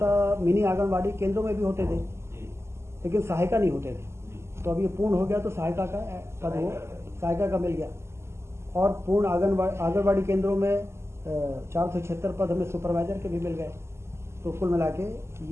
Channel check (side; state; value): left; late; 0.13 ms